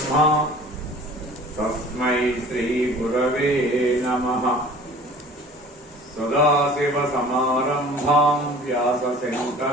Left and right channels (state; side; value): normal; both; correlation 0.46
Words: తస్మై శ్రీ గురవే నమః. సదాశివ సమారంభాం వ్యాస